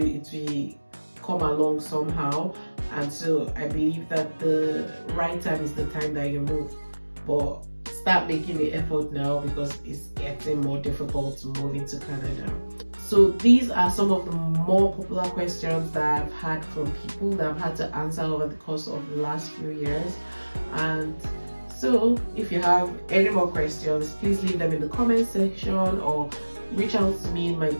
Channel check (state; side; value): inverted; both; correlation -1.00